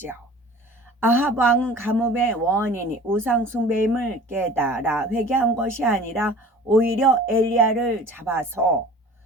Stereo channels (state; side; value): normal; both; correlation 0.43